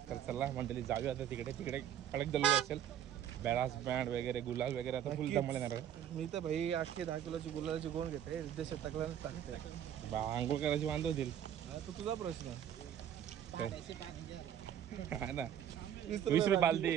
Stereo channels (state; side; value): quieter; left; 10.0 dB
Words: तर चला मंडळी जाऊया आता तिकडे. कडक दल्लो असेल. बॅरास बँड वगैरे, गुलाल वगैरे आता फुल धमाल येणार. मी तर भाई 8 ते 10 किलोची गुलालाची गोण घेते. उद्देश टाकल्यानंच टाकते. आंघोळ करायची वांधो होतील. तो तुझा प्रश्न. हा ना, 20 रुपये बालदी.